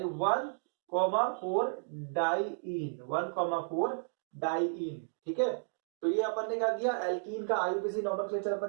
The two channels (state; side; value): silent; left; digital silence